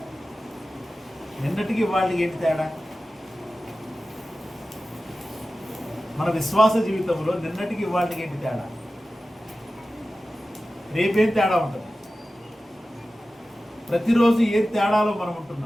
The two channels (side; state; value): both; normal; correlation 0.95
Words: నిన్నటికి వాళ్ళకి ఏంటి తేడా? మన విశ్వాస జీవితంలో నిన్నటికి వాళ్ళకి ఏంటి తేడా? రేపేం తేడా ఉంటుంది? ప్రతిరోజు ఏ తేడాలో మనం